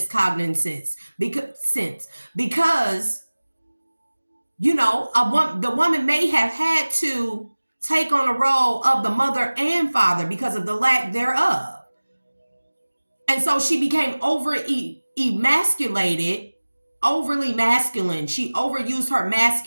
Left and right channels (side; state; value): both; inverted; correlation -1.00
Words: because the woman may have had to take on a role of the mother and father because of the lack thereof. And so she became emasculated, overly masculine. She overused her